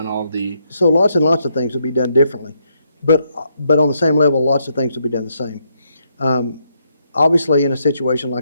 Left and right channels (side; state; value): both; inverted; correlation -0.77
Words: all the So lots and lots of things will be done differently, but on the same level, lots of things will be done the same. Obviously, in a situation